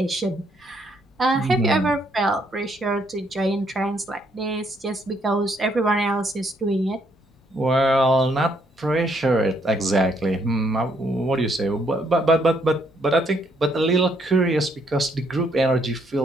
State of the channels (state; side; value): normal; both; correlation 0.71